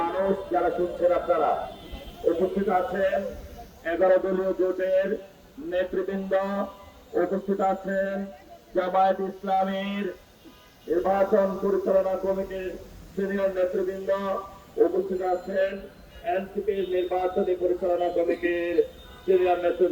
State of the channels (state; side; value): identical; both; correlation 1.00